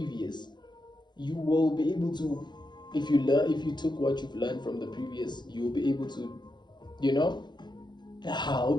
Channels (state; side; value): late; right; 0.21 ms